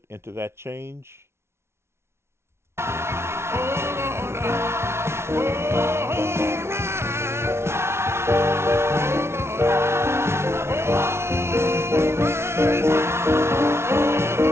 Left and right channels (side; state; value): left; late; 0.12 ms